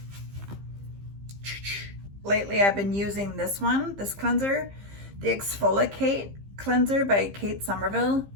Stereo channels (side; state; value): left; late; 15 ms